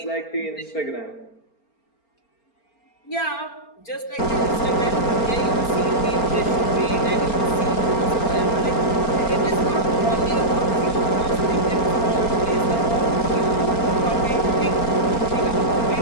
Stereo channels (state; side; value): late; right; 4.4 ms